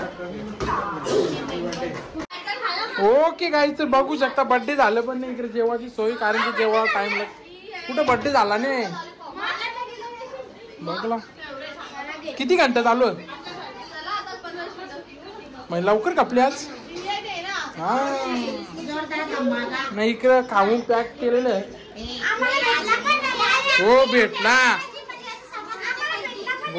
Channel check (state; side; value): identical; both; correlation 1.00